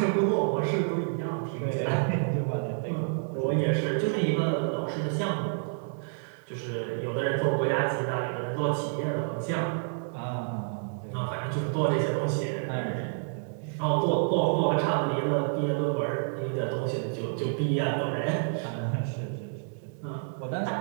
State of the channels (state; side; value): silent; left; digital silence